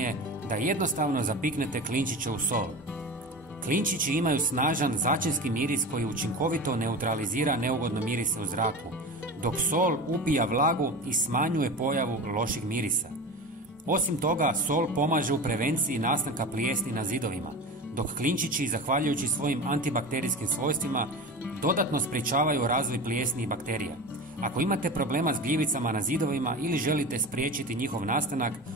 da jednostavno zapiknete klinčiće u sol. Klinčići imaju snažan začinski miris koji učinkovito neutralizira neugodne mirise u zraku, dok sol upija vlagu i smanjuje pojavu loših mirisa. Osim toga, sol pomaže u prevenciji nastanka plijesni na zidovima, dok klinčići, zahvaljujući svojim antibakterijskim svojstvima, dodatno sprječavaju razvoj plijesni i bakterija. Ako imate problema s gljivicama na zidovima ili želite spriječiti njihov nastanak,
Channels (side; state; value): both; normal; correlation 0.30